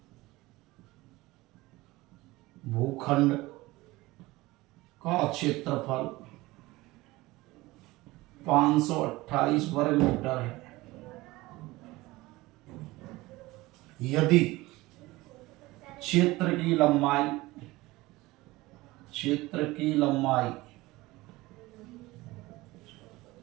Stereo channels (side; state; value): left; quieter; 19.9 dB